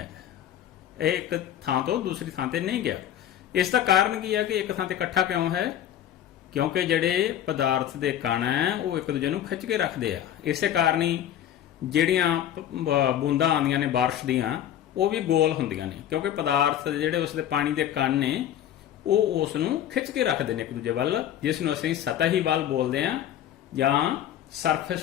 ਇਹ ਇੱਕ ਥਾਂ ਤੋਂ ਦੂਸਰੀ ਥਾਂ ਤੇ ਨਹੀਂ ਗਿਆ। ਇਸ ਦਾ ਕਾਰਨ ਕੀ ਹੈ ਕਿ ਇੱਕ ਥਾਂ ਤੇ ਇਕੱਠਾ ਕਿਉਂ ਹੈ? ਕਿਉਂਕਿ ਜਿਹੜੇ ਪਦਾਰਥ ਦੇ ਕਣ ਹੈ ਉਹ ਇੱਕ ਦੂਜੇ ਨੂੰ ਖਿੱਚ ਕੇ ਰੱਖਦੇ ਆ। ਇਸੇ ਕਾਰਨ ਹੀ ਜਿਹੜੀਆਂ ਬੂੰਦਾਂ ਆਉਂਦੀਆਂ ਨੇ ਬਾਰਿਸ਼ ਦੀਆਂ ਉਹ ਵੀ ਗੋਲ ਹੁੰਦੀਆਂ ਨੇ, ਕਿਉਂਕਿ ਪਦਾਰਥ ਜਿਹੜੇ ਉਸ ਦੇ ਪਾਣੀ ਦੇ ਕਣ ਨੇ ਉਹ ਉਸ ਨੂੰ ਖਿੱਚ ਕੇ ਰੱਖਦੇ ਨੇ ਇੱਕ ਦੂਜੇ ਵੱਲ, ਜਿਸ ਨੂੰ ਅਸੀਂ ਸਤਹੀ ਬਲ ਬੋਲਦੇ ਆ ਜਾਂ ਸਰਫੇਸ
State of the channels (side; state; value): right; quieter; 11.1 dB